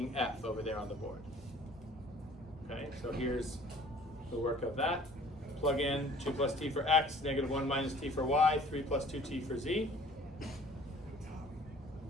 F over there on the board. Okay, so here's the work of that. Plug in 2 plus t for x, negative 1 minus t for y, 3 plus 2t for z.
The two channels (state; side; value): normal; both; correlation 0.52